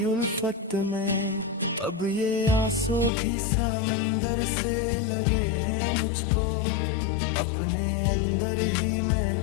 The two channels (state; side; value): drops out; right; at 3.1 s